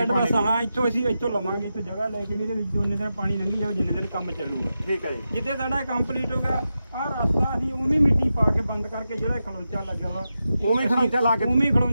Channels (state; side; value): inverted; both; correlation -0.90